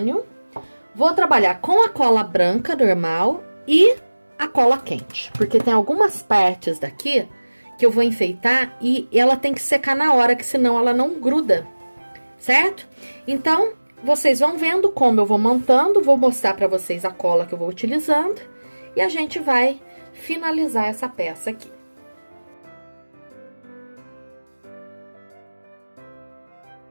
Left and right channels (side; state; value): both; inverted; correlation -1.00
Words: Vou trabalhar com a cola branca normal e a cola quente, porque tem algumas partes daqui que eu vou enfeitar e ela tem que secar na hora, que senão ela não gruda, certo? Então, vocês vão vendo como eu vou montando, vou mostrar pra vocês a cola que eu vou utilizando e a gente vai finalizar essa peça aqui.